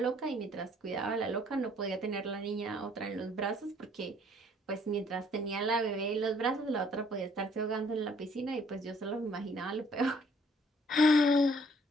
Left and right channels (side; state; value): both; normal; correlation 0.62